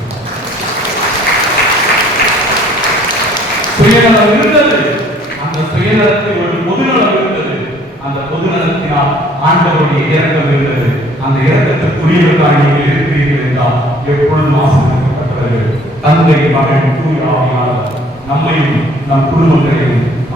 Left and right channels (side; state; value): both; normal; correlation 0.57